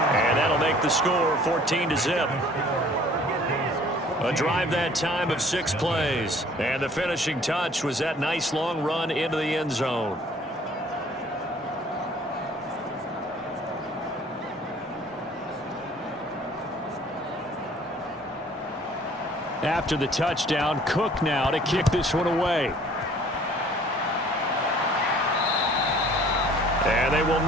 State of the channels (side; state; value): both; normal; correlation 0.54